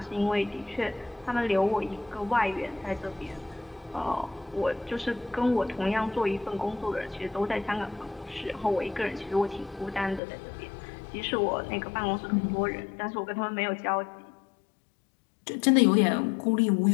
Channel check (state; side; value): drops out; right; at 10.2 s